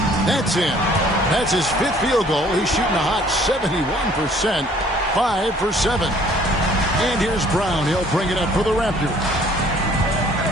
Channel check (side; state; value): both; normal; correlation 0.57